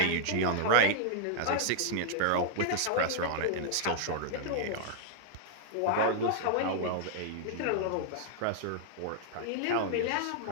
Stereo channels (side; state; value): both; different; correlation -0.01